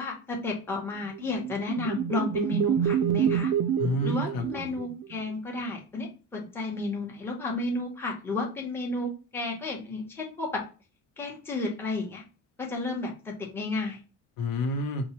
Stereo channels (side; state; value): both; normal; correlation 0.28